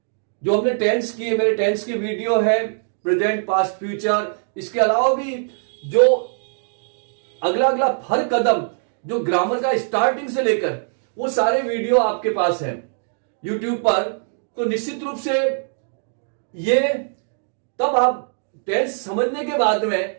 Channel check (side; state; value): left; silent; digital silence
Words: जो हमने टेंस की, मेरे टेंस की वीडियो है, प्रेजेंट, पास्ट, फ्यूचर, इसके अलावा भी जो अगला अगला हर कदम जो ग्रामर का स्टार्टिंग से लेकर वो सारे वीडियो आपके पास है यूट्यूब पर। तो निश्चित रूप से ये तब आप टेंस समझने के बाद में